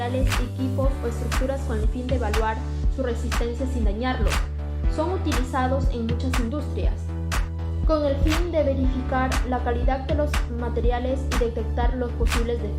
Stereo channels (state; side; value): identical; both; correlation 1.00